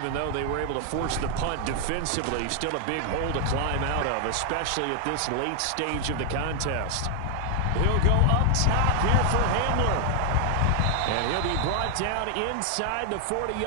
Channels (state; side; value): different; both; correlation 0.00